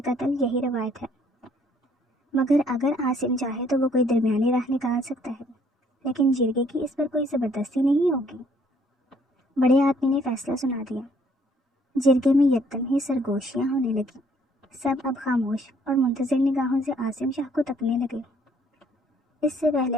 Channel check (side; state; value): both; normal; correlation 0.63